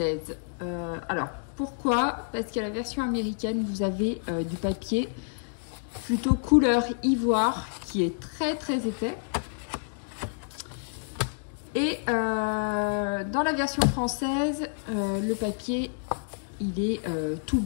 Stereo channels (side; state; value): right; silent; digital silence